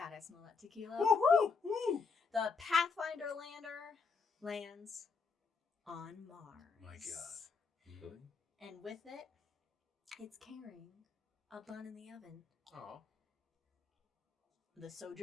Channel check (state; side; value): quieter; right; 5.1 dB